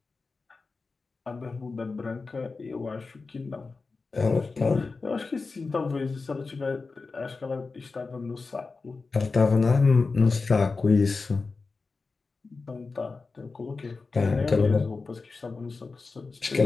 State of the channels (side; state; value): right; quieter; 4.1 dB